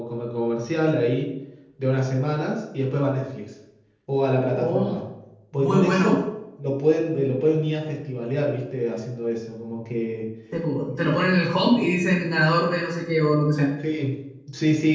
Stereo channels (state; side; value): identical; both; correlation 1.00